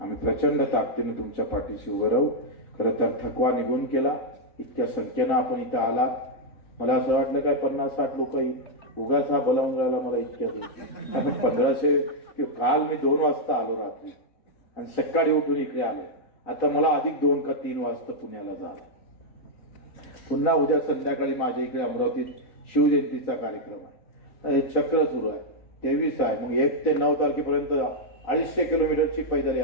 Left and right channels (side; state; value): right; late; 4.0 ms